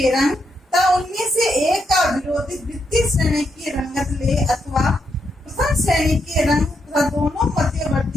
रंग तथा उनमें से एक का विरोधी द्वितीय श्रेणी की रंगत ले अथवा प्रथम श्रेणी के रंग तथा दोनों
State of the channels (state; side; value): normal; both; correlation 0.80